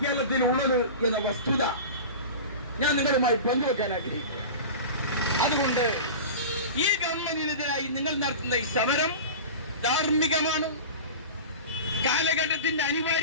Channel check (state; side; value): inverted; both; correlation -0.32